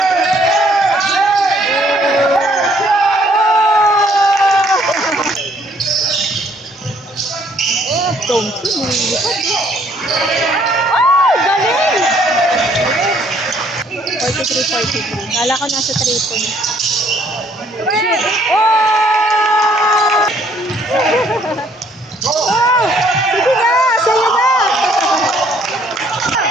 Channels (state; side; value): normal; both; correlation 0.64